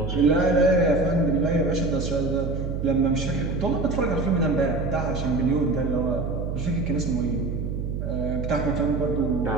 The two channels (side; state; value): right; noise; hum, 3 dB below the sound